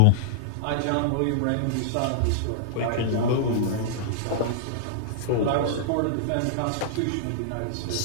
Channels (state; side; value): different; both; correlation -0.02